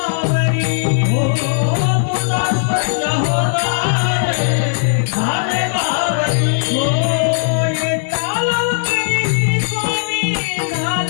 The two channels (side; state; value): right; silent; 68 dB below the other